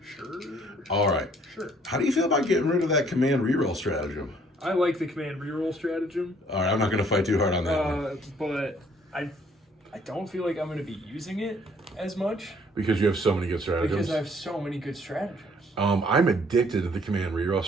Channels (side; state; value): both; normal; correlation 0.61